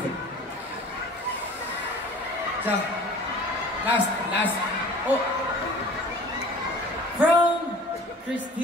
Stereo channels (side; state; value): both; normal; correlation 0.44